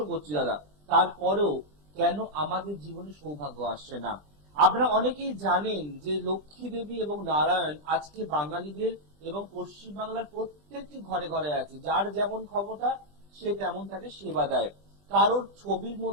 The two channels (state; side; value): late; left; 20 ms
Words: করছি দাদা, তারপরেও কেন আমাদের জীবনে সৌভাগ্য আসছে না? আপনারা অনেকেই জানেন যে লক্ষ্মী দেবী এবং নারায়ণ আজকে বাঙালিদের এবং পশ্চিম বাংলার প্রত্যেকটি ঘরে ঘরে আছে। যার যেমন ক্ষমতা সে তেমন তাকে সেবা দেয়। কারোর ছবির